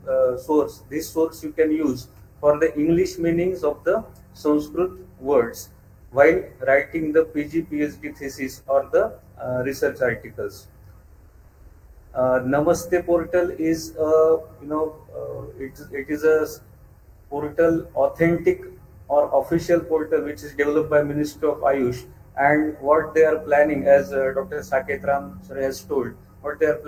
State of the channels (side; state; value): both; identical; correlation 1.00